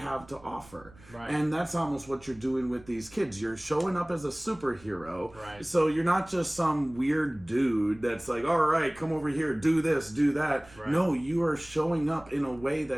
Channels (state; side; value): noise; right; rumble, 23 dB below the sound